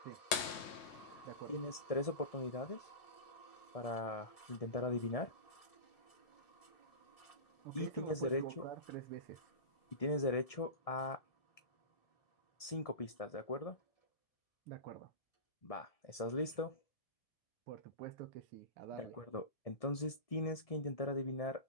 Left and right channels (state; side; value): late; right; 1.7 ms